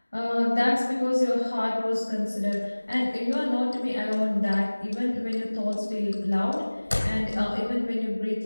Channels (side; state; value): both; inverted; correlation -1.00